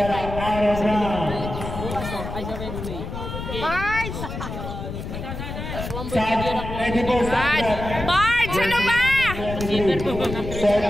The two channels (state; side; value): noise; left; rumble, 7 dB below the sound